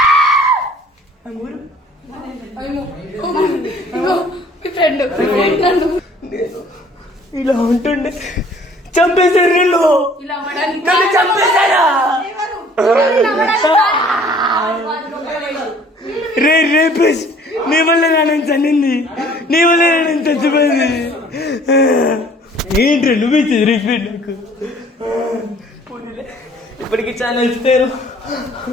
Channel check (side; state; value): both; normal; correlation 0.55